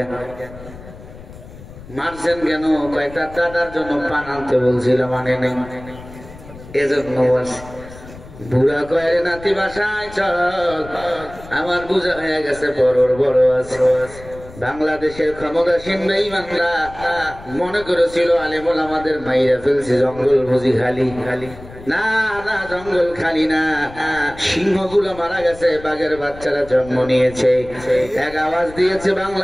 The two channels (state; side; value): noise; left; rumble, 17 dB below the sound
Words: মারছেন কেন? কয় তার দাদার জন্য পান আনতে বলছিলাম, মানে নেই এজন্য বলছি। বুড়া কয়, নাতি বাসায় চল, আমার বুঝা হয়ে গেছে বড়র বড় আছে। বাংলাদেশের ক্ষমতাসীন বেঈমানরা মনে করেছিল আলেমুল আমাদের মাইরা ফেলছে, জঙ্গল বুঝি খালি। না না, জঙ্গল খালি না, সিংহগুলো মারা গেছে, বাঘের বাচ্চারা জন্ম নিয়েছে। এক আওয়াজ দিয়েছে